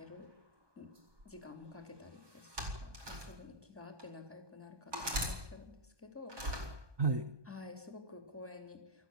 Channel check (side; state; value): left; late; 1.2 ms